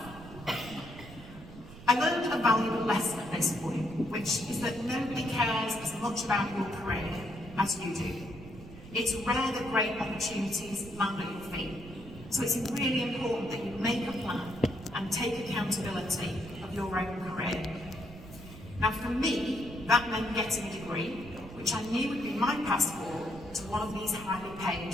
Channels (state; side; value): noise; right; rumble, 15 dB below the sound